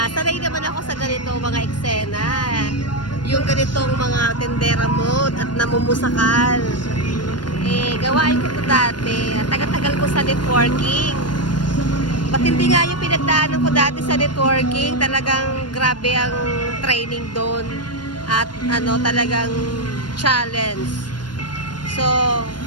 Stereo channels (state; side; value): late; right; 0.71 ms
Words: Sanay naman ako sa ganito mga eksena. Yung ganitong mga tendera mode at namumusakal. Gawain ko ito dati. Tagal-tagal ko sa networking. Patindi nga yung pinagdaanan ko dati sa networking. Talagang grabe ang training doon. At talagang challenge. So,